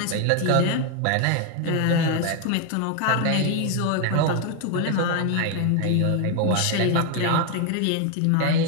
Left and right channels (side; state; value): both; different; correlation 0.01